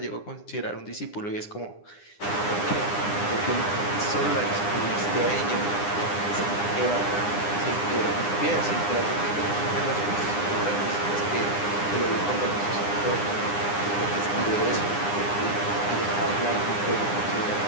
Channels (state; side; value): late; right; 9.8 ms